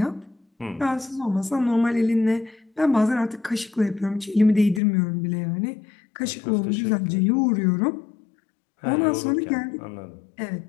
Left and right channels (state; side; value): drops out; right; at 4.8 s